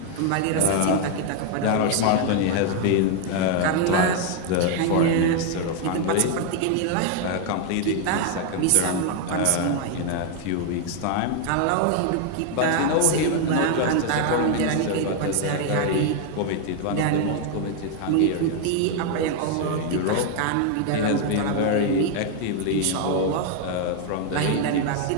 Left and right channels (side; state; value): both; different; correlation 0.00